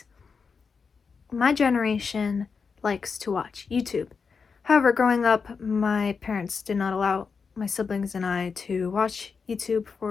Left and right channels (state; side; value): quieter; right; 5.4 dB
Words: My generation likes to watch YouTube. However, growing up, my parents did not allow my siblings and I to watch YouTube